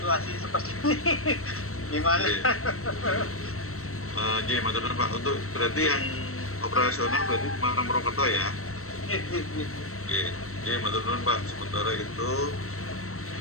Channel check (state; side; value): late; right; 0.63 ms